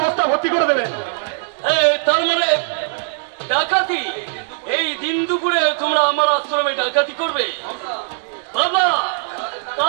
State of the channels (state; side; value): silent; left; 66 dB below the other